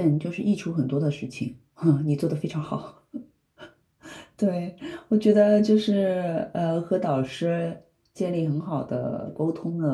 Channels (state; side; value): identical; both; correlation 1.00